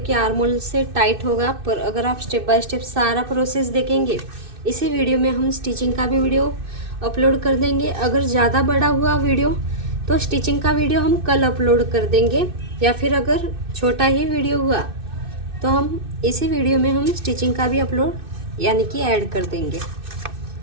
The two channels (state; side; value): late; left; 2.6 ms